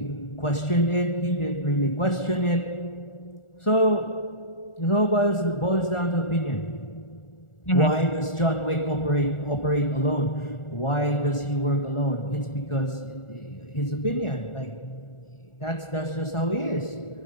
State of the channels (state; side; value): late; right; 1.4 ms